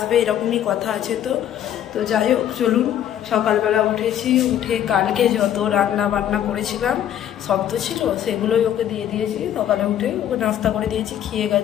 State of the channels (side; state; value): right; quieter; 10.6 dB